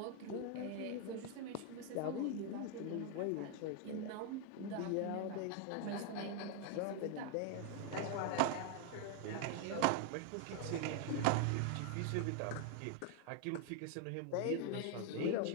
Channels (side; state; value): both; different; correlation 0.01